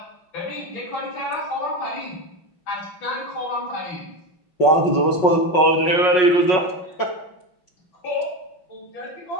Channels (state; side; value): late; right; 5.5 ms